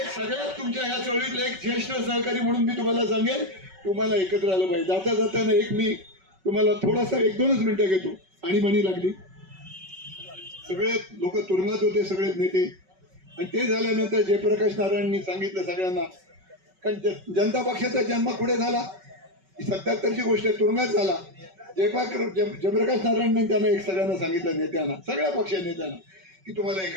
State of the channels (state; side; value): late; left; 5.3 ms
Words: सगळ्यात तुमच्या ह्या चळवळीतला एक ज्येष्ठ सहकारी म्हणून मी तुम्हाला सांगेन, तुम्हाला एकत्र आलं पाहिजे. जाताना एक मी तुम्हाला थोडासा 1-2 मिनिटं घेतो. आणि म्हणी लागली, सगळे लोक तुरुंगात होते, सगळे नेते. आणि ते झाल्यानंतर जयप्रकाश नारायणांनी सांगितलं सगळ्यांना, कारण जनता पक्षाचा जन्म पुढे झाला, 77ची गोष्ट आहे, तुरुंगात झाला. जयप्रकाश नारायणांनी त्यांना एक सगळ्यांना सांगितलं, नेत्यांना, सगळ्या पक्ष नेत्यांना, की तुम्हाला